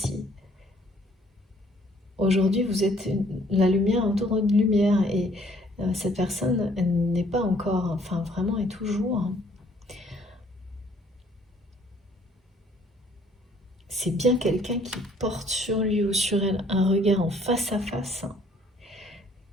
Aujourd'hui, vous êtes la lumière entourée de lumière et cette personne n'est pas encore, enfin vraiment est toujours. C'est bien quelqu'un qui porte sur lui ou sur elle un regard en face à face, hein,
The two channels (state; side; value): normal; both; correlation 0.61